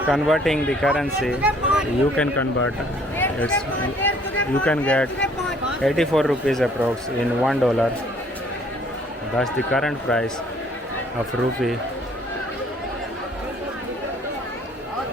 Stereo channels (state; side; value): normal; both; correlation 0.60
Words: converting the currency. You can convert. You can get 84 rupees approx in $1. That's the current price of rupee.